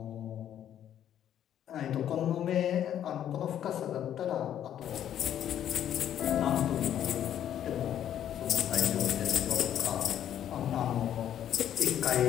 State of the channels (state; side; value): quieter; right; 10.5 dB